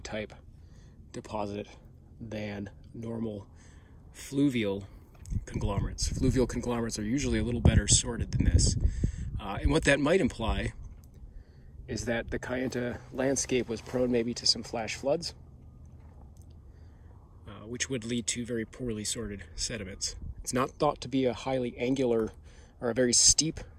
deposit than normal fluvial conglomerates. Fluvial conglomerates are usually a little better sorted than this. And what that might imply is that the Kayenta landscape was prone maybe to some flash floods, which would lead to very poorly sorted sediments. It's not thought to be a highly angular or a very steep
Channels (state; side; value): identical; both; correlation 1.00